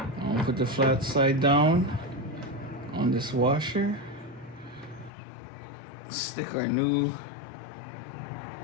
gonna put the flat side down on this washer. Stick our new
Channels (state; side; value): drops out; right; at 5.1 s